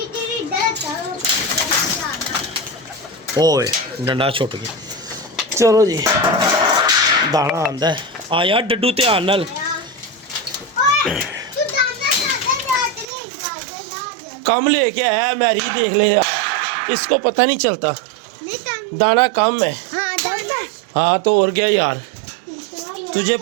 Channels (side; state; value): left; drops out; at 13.1 s